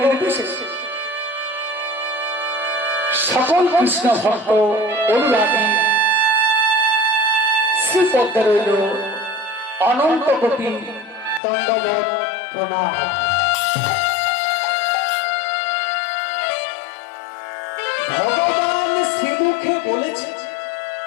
নির্বিশেষে সকল কৃষ্ণ ভক্ত অনুরাগী শ্রীপদে রইল অনন্ত কোটি দণ্ডবত প্রণাম। ভগবান শ্রীমুখে বলেছে,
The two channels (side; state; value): right; drops out; at 11.4 s